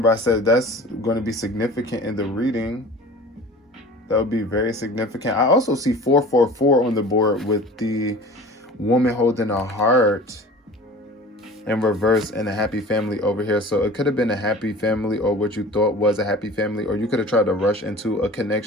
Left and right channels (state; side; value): normal; both; correlation 0.41